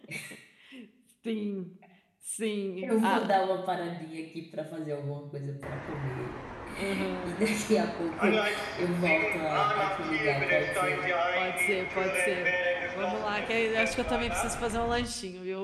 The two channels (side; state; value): both; identical; correlation 1.00